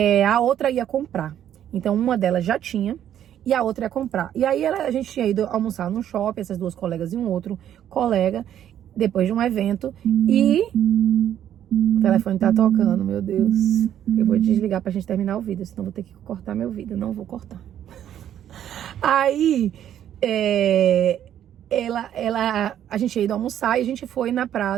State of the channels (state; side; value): quieter; left; 10.6 dB